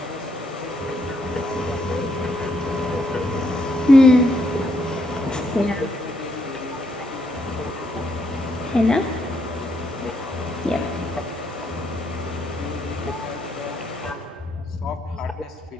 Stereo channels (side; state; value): both; normal; correlation 0.75